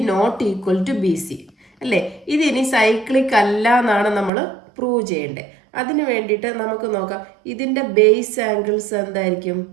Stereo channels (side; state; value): left; drops out; at 4.3 s